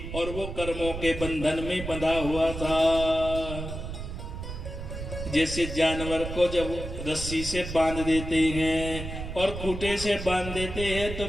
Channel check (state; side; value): noise; right; rumble, 7 dB below the sound